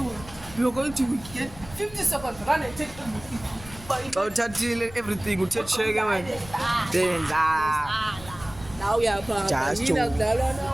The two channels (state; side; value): noise; left; rumble, 17 dB below the sound